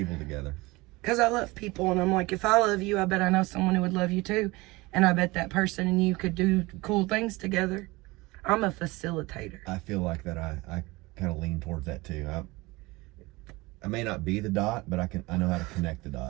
Because I love people, and I'm like, if I love you, I bet I know someone who would love you too. And I bet that person and you could do cool things together. I'm a facilitator. I feel like that I kind of lean towards that too. I may not be the dot, but I know how to connect the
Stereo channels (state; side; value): quieter; left; 22.3 dB